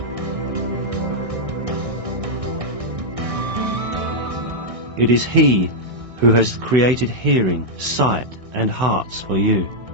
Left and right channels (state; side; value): late; left; 1.6 ms